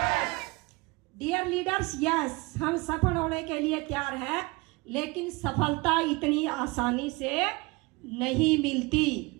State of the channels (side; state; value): left; quieter; 25.2 dB